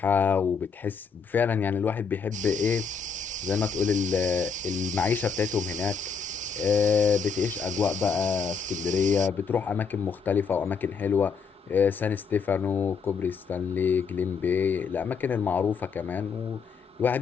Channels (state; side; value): quieter; right; 5.7 dB